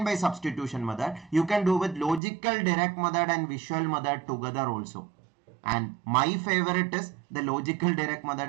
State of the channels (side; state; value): left; drops out; at 2.2 s